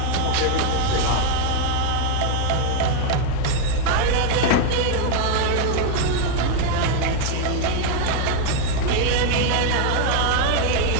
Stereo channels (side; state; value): both; different; correlation 0.00